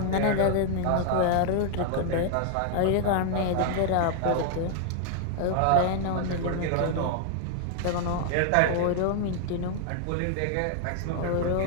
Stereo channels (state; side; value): different; both; correlation 0.00